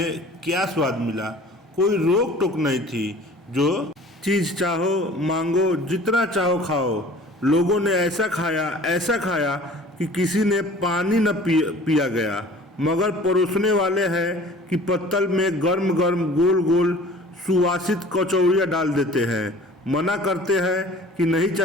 क्या स्वाद मिला। कोई रोक टोक नहीं थी। जो चीज़ चाहो मांगो, जितना चाहो खाओ। लोगों ने ऐसा खाया कि किसी ने पानी न पिया गया, मगर परोसने वाले हैं कि पत्तल में गर्म गर्म गोल गोल सुवासित कचौड़ियाँ डाल देते हैं। मना करते हैं कि नहीं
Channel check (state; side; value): normal; both; correlation 0.46